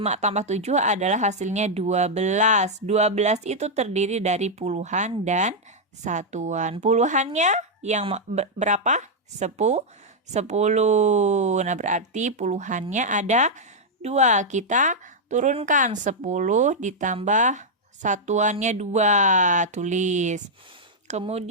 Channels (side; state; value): both; normal; correlation -0.03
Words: tambah 7 adalah hasilnya 12. 12 itu terdiri dari puluhan dan satuan. Puluhannya yang berapa? 10. Nah, berarti puluhannya ada 2. Kita turunkan 10 ditambah satuannya 2. Tulis.